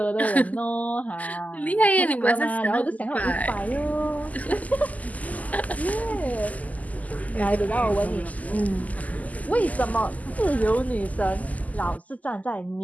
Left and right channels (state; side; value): late; right; 0.076 ms